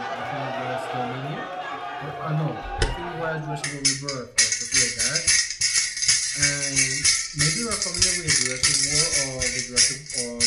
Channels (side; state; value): both; identical; correlation 1.00